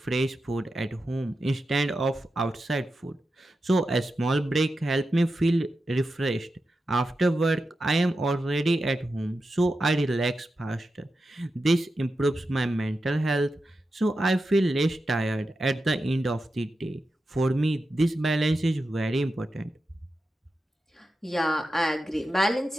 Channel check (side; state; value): both; normal; correlation 0.90